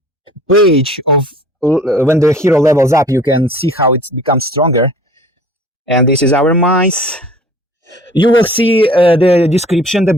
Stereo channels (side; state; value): both; normal; correlation 0.49